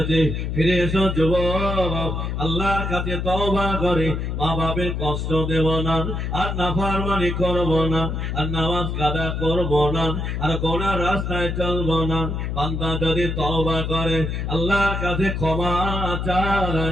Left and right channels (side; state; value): left; noise; hum, 2 dB below the sound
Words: ফিরে এসো যুবক, আল্লাহর কাছে তওবা করে মা বাপের কষ্ট দেব না, আর নাফরমানি করব না, আর নামাজ কাদা করব না, আর গোনার রাস্তায় চলব না। বান্দা যদি তওবা করে আল্লাহর কাছে ক্ষমা